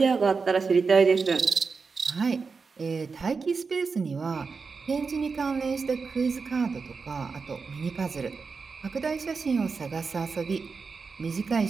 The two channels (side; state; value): left; quieter; 4.9 dB